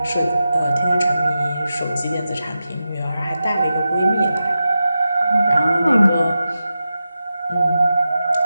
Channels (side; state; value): both; inverted; correlation -0.91